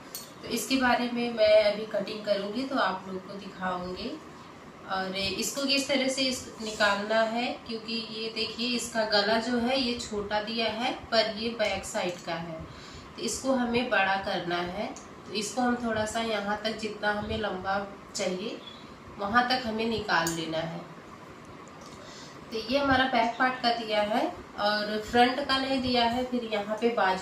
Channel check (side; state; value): both; identical; correlation 1.00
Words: तो इसके बारे में मैं अभी कटिंग करूंगी तो आप लोग को दिखाऊंगी और इसको किस तरह से निकालना है, क्योंकि ये देखिए इसका गला जो है ये छोटा दिया है पर ये बैक साइड का है, तो इसको हमें बड़ा करना है। तो इसको हम थोड़ा सा यहाँ तक जितना हमें लंबा चाहिए वहाँ तक हमें निकाल लेना है। तो ये हमारा बैक पार्ट का दिया है और फ्रंट का नहीं दिया है, फिर यहाँ पे